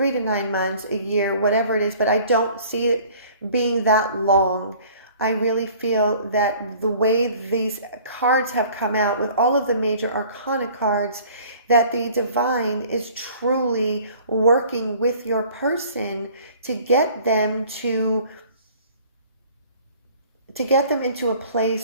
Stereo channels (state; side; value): inverted; both; correlation -0.51